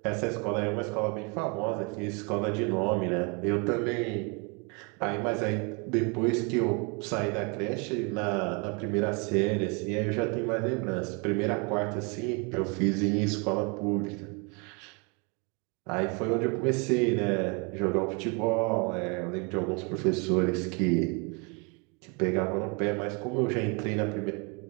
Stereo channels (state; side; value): quieter; left; 32.5 dB